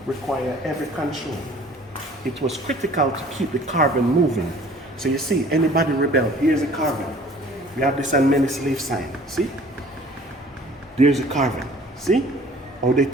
require heavy control. It was critical to keep the caravan moving. So you see, anybody rebel, here's a caravan. We have this on many slave sign, see? There's a caravan, see? How they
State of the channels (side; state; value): both; normal; correlation 0.51